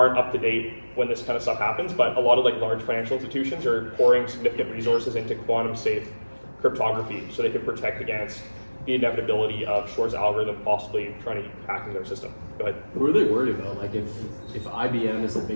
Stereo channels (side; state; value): both; inverted; correlation -1.00